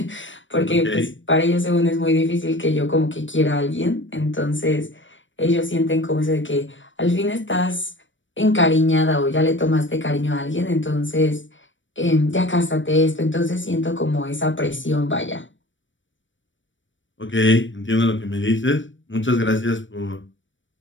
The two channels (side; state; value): right; late; 0.55 ms